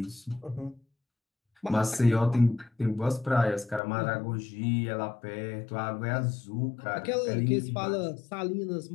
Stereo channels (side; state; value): right; drops out; at 3.8 s